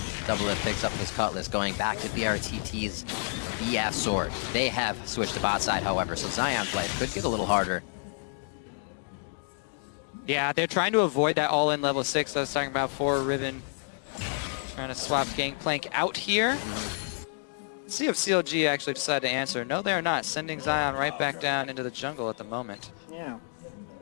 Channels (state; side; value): silent; right; 58 dB below the other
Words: Doublelift picks up his Cutlass, going back to BRTT's BF Sword. They have switched to bot side, however, so Zion's life could get a little harder. Yeah, they're trying to avoid that all-in level 6 I was talking about for Riven. Trying to swap Gangplank out here. Let's see if CLG actually decide to answer. No, they're not. Sending Zion right back down into the jungle at the moment. Yeah.